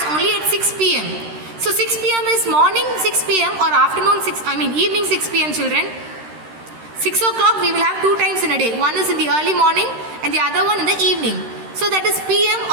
only at 6 PM. So 6 PM is morning 6 PM or afternoon evening 6 PM, children. 6 o'clock we will have 2 times in a day. One is in the early morning and the other one in the evening. So that is PM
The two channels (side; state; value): left; late; 13 ms